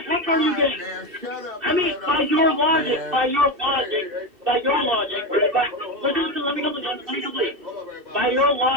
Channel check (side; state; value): left; late; 2.7 ms